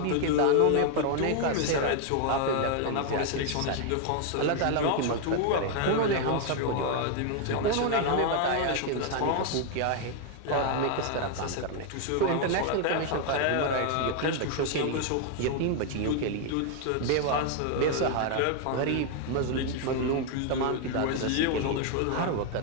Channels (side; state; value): both; different; correlation 0.00